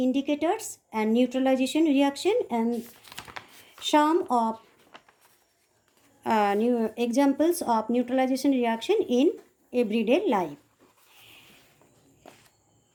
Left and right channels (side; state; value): both; identical; correlation 1.00